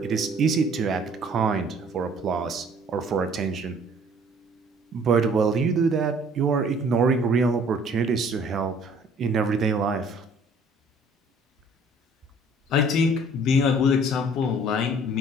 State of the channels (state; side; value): normal; both; correlation 0.55